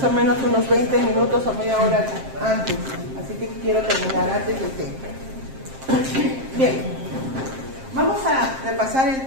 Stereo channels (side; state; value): left; late; 7.6 ms